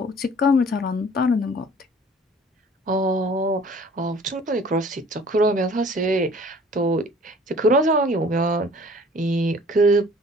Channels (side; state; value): both; normal; correlation 0.51